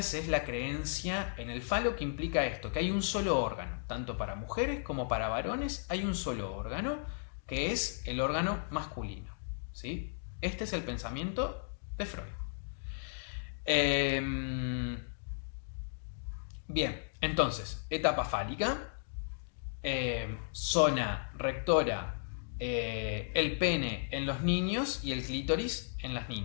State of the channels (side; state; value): right; silent; digital silence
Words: es la creencia en el falo, que implica esto, que hay un solo órgano, tanto para mujeres como para varones hay un solo órgano, que es el órgano masculino, ¿sí? Este es el pensamiento de Freud. Bien, entonces, etapa fálica, zona rectora, el pene en los niños y el clítoris en las